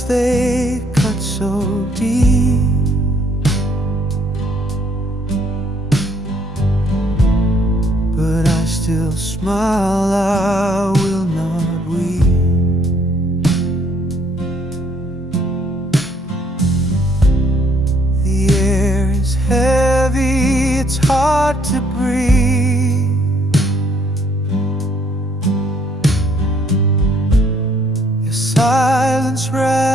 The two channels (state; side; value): normal; both; correlation 0.66